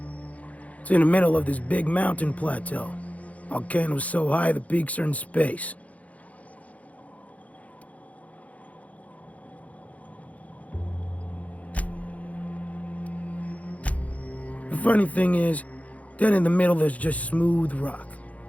It's in the middle of this big mountain plateau. Volcanoes so high the peaks are in space. The funny thing is, dead in the middle there's just smooth rock.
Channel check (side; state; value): right; late; 0.068 ms